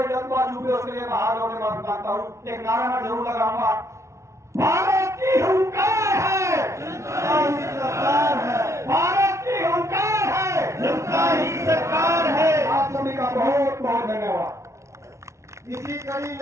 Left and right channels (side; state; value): left; late; 0.14 ms